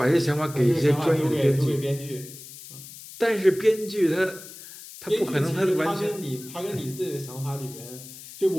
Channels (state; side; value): noise; left; hiss, 15 dB below the sound